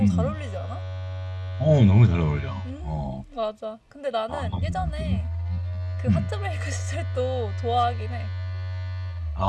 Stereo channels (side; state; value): both; identical; correlation 1.00